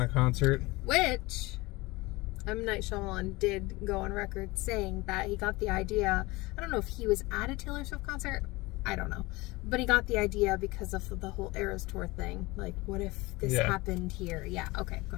of concert. Which M. Night Shyamalan did go on record saying that he got the idea. I don't know if he was at a Taylor Swift concert. I don't know. But he got the idea because of the whole Eras Tour thing. Like, what if this happened here? Yeah, okay, go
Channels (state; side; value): quieter; right; 22.2 dB